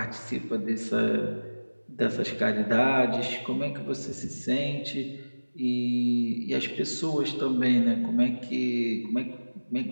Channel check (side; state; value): both; inverted; correlation -1.00